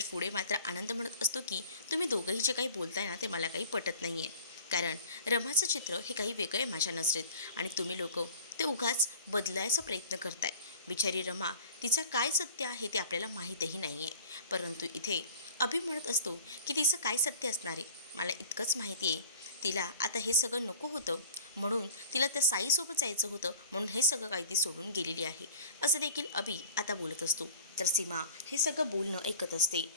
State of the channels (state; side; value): inverted; both; correlation -0.44